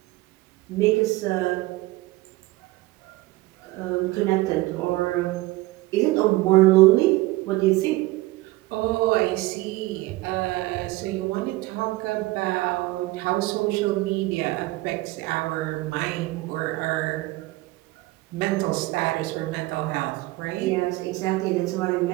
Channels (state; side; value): quieter; left; 19.6 dB